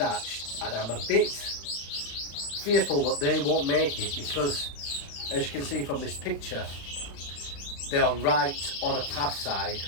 and I'm a bit fearful that they won't make it because, as you can see from this picture, they are right on a path side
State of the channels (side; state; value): right; late; 35 ms